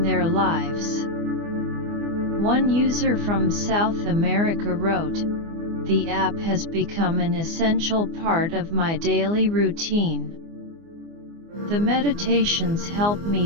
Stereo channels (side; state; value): left; late; 24 ms